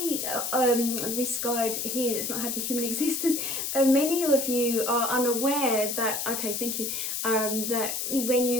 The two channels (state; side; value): noise; left; hiss, 2 dB below the sound